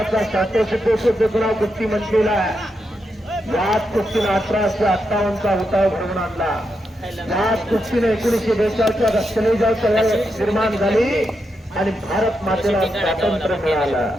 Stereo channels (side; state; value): both; normal; correlation 0.84